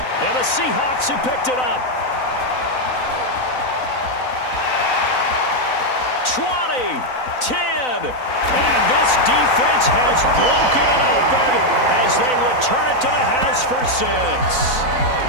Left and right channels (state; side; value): late; right; 4.0 ms